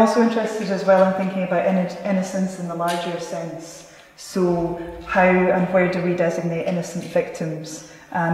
interested as well in thinking about innocence in the larger sense. So how and where do we designate innocent victims?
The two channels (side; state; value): both; identical; correlation 1.00